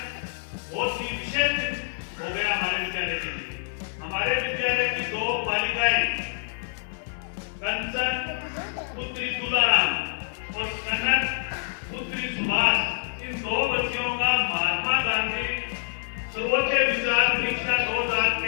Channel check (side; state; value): right; silent; 60 dB below the other